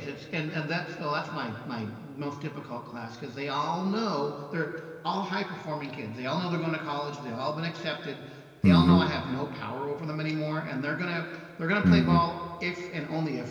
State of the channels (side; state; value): both; identical; correlation 1.00